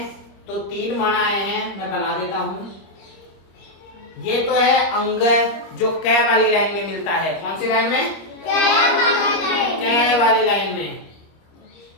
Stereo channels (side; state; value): right; late; 25 ms